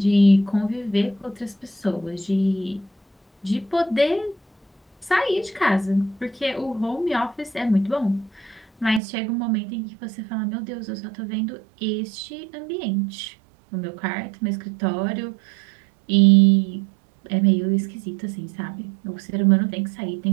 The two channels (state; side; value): drops out; left; at 9.0 s